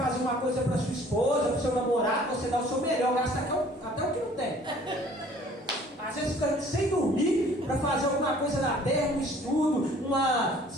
uma coisa para sua esposa, para o seu namorado, você dá o seu melhor, gasta até o que não tem. Às vezes fica sem dormir para fazer alguma coisa na terra, um estudo, uma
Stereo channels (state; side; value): normal; both; correlation 0.54